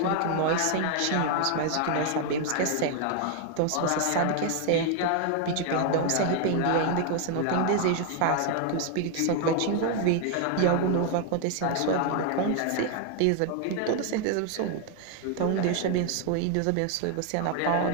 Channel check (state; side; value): different; both; correlation 0.00